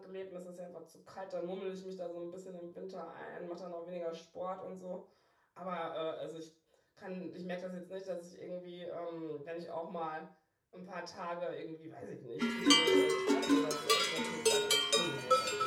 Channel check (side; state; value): both; identical; correlation 1.00